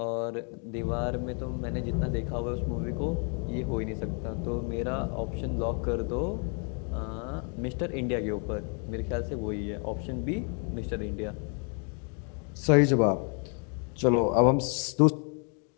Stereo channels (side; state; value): right; quieter; 39.4 dB